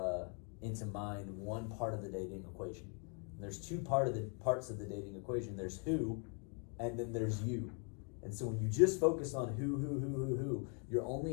mind one part of the dating equation. There's two parts of the dating equation. There's who, and then there's you. And so when you just focus on who, you're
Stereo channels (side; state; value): right; quieter; 39.8 dB